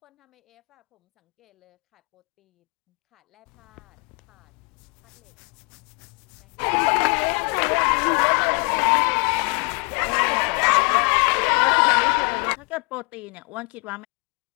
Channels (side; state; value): right; quieter; 35.1 dB